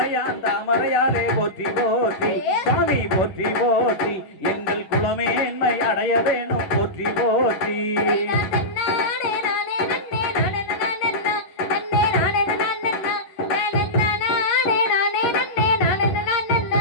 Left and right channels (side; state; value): right; late; 11 ms